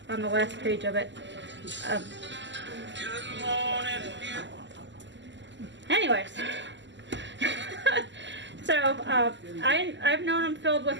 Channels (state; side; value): late; left; 0.53 ms